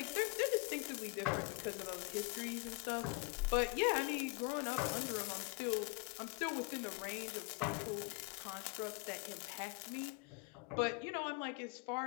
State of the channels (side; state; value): right; quieter; 30.1 dB